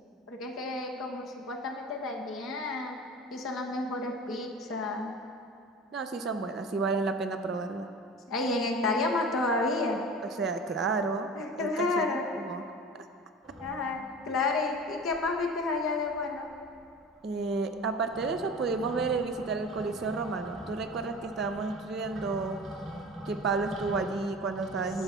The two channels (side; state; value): both; normal; correlation 0.37